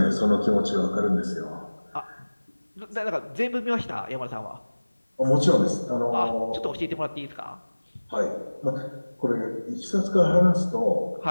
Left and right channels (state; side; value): inverted; both; correlation -1.00